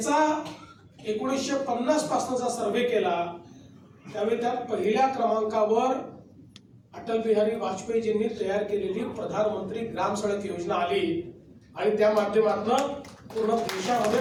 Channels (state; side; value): identical; both; correlation 1.00